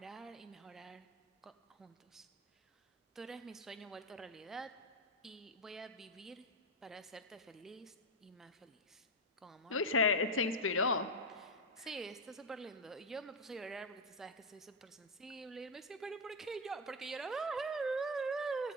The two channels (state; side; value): normal; both; correlation 0.04